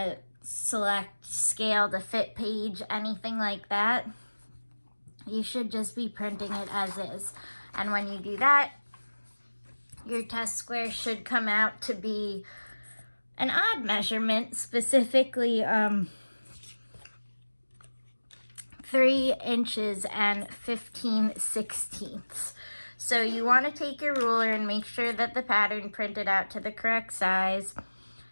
select scale to fit page, anything like that. You should just be printing it as is. And when you do that, your test square should come out to be an odd measurement, specifically 3 inches and 15/16. So you want to take your ruler and make sure that the pattern printed out to the correct size.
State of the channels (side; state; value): both; inverted; correlation -1.00